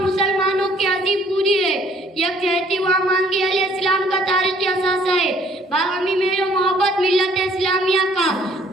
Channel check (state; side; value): normal; both; correlation 0.61